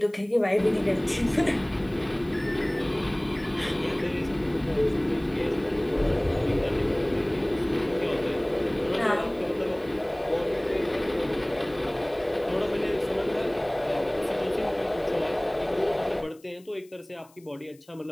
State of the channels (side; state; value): left; noise; hiss, 29 dB below the sound